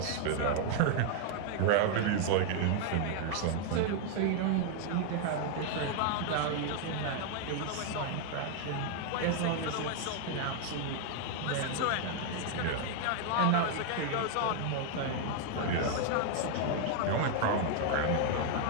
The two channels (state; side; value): different; both; correlation 0.00